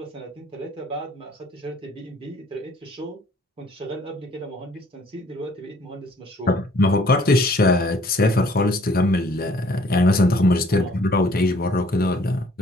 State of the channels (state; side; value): normal; both; correlation 0.59